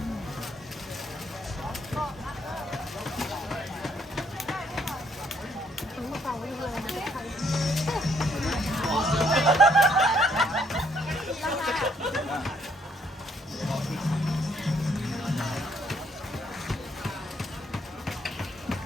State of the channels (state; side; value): normal; both; correlation 0.68